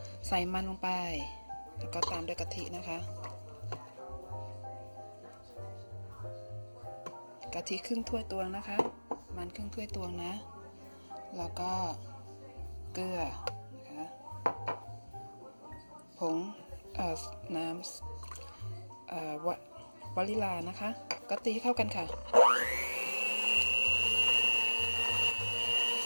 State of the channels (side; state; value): both; inverted; correlation -1.00